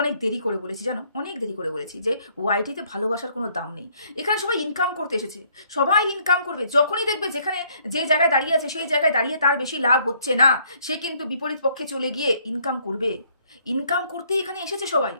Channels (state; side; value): inverted; both; correlation -0.65